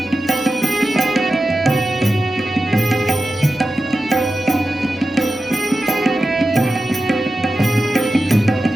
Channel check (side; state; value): both; normal; correlation 0.93